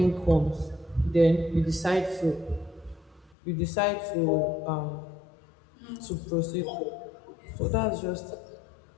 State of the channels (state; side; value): drops out; right; at 3.3 s